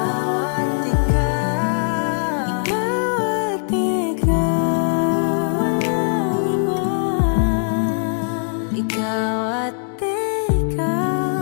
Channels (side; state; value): right; silent; digital silence